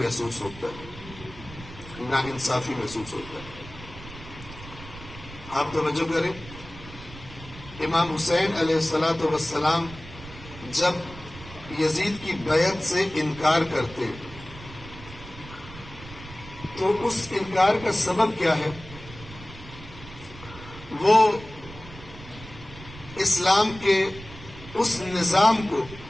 ہوتا ہے، ناانصافی محسوس ہوتا ہے. آپ توجہ کریں، امام حسین علیہ الصلوۃ والسلام جب یزید کی بیعت سے انکار کرتے تو اس انکار کا سبب کیا ہے؟ وہ اسلام کے اس نظام کو،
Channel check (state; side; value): noise; right; rumble, 16 dB below the sound